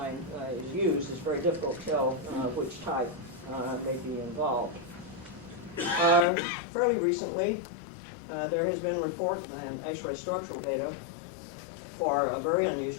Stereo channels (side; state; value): right; drops out; at 6.2 s